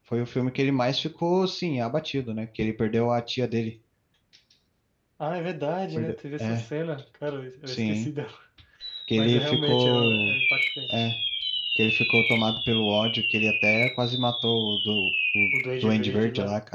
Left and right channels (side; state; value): both; identical; correlation 1.00